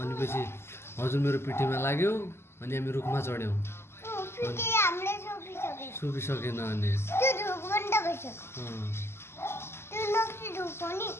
पछि हजुर मेरो पिठीमा लाग्यो अनि हामी रुखमा चढ्यौँ सुपिसकेन अनि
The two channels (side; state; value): right; late; 0.12 ms